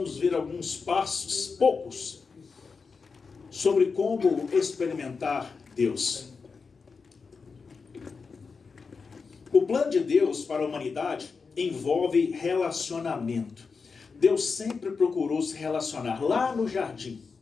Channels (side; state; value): right; quieter; 4.9 dB